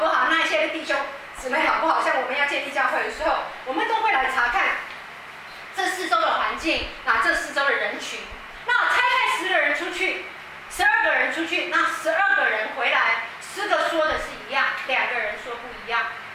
好，那一些弟兄姊妹好不好。像我们要建立教会的时候，我们都会来查看这四周的环境，这四周的人群。那差派10个人出去，12个人出去，那12个人回来，10个说的是一样，2个人说不一样。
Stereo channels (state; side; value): identical; both; correlation 1.00